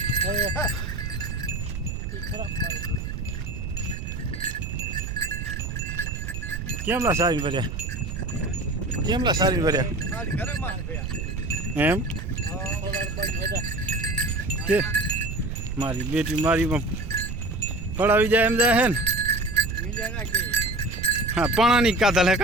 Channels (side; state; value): right; noise; rumble, 5 dB below the sound